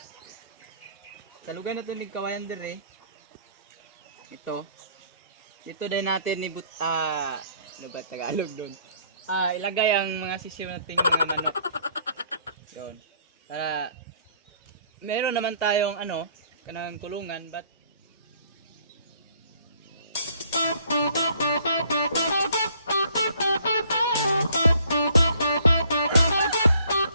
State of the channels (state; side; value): inverted; both; correlation -0.60